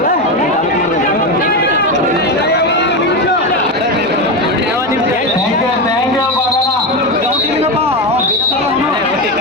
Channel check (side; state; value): both; normal; correlation 0.15